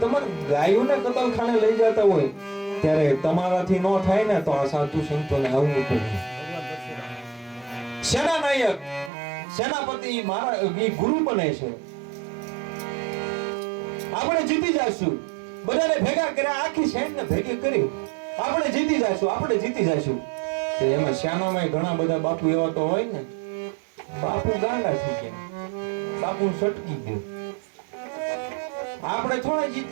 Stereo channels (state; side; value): drops out; left; at 9.1 s